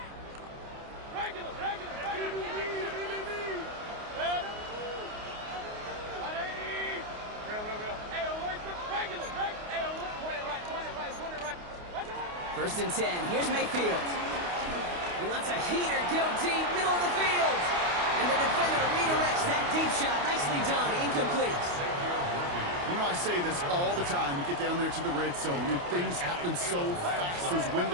First and 10. Here's Mayfield. He lets a heater go deep, middle of the field. And the defender redirects that deep shot. Nicely done. Incomplete. You know, I say this all the time. You get down there to the red zone, and things happen so fast. Those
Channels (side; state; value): left; late; 28 ms